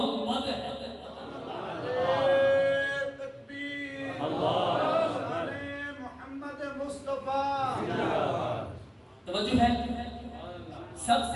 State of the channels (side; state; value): both; identical; correlation 1.00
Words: ہے۔ توجہ ہے، سب